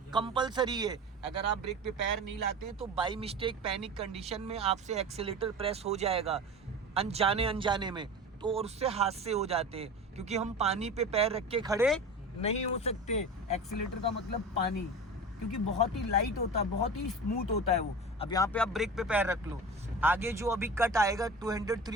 कंपलसरी है। अगर आप ब्रेक पे पैर नहीं लाते हैं तो बाई मिस्टेक पैनिक कंडीशन में आपसे एक्सीलेटर प्रेस हो जाएगा अनजाने में, तो और उससे हादसे हो जाते हैं। क्योंकि हम पानी पे पैर रख के खड़े नहीं हो सकते। एक्सीलेटर का मतलब पानी, क्योंकि बहुत ही लाइट होता है, बहुत ही स्मूथ होता है वो। अब यहाँ पे आप ब्रेक पे पैर रख लो, आगे जो अभी कट आएगा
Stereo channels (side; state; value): both; normal; correlation 0.32